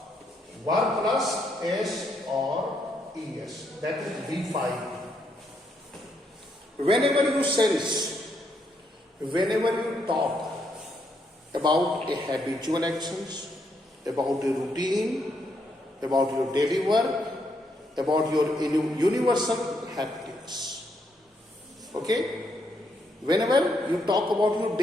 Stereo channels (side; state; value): both; normal; correlation 0.76